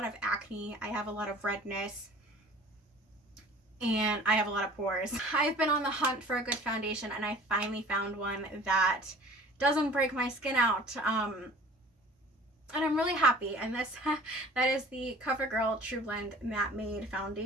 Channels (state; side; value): normal; both; correlation 0.46